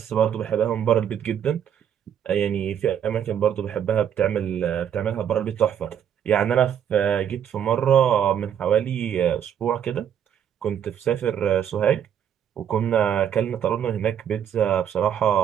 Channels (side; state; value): left; quieter; 9.1 dB